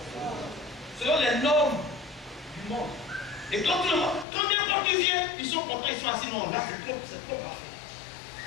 Selon les normes du monde. Et quand tout le monde, quand n'importe qui vient, ils sont contents, ils sont assis. Non, là c'est trop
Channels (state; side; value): drops out; right; at 4.2 s